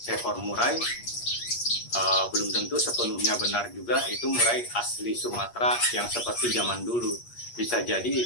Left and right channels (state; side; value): late; right; 8.4 ms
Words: murai, belum tentu sepenuhnya benar juga itu murai asli Sumatera yang seperti zaman dulu. Bisa jadi